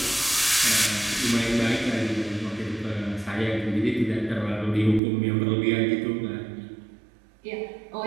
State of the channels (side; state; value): left; drops out; at 5.0 s